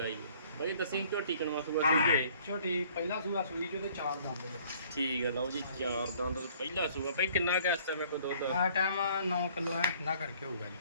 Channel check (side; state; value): both; inverted; correlation -0.56